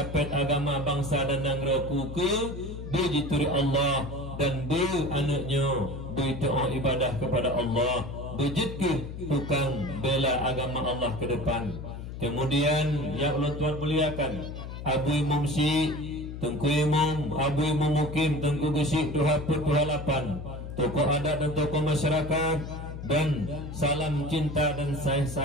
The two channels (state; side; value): noise; left; hum, 9 dB below the sound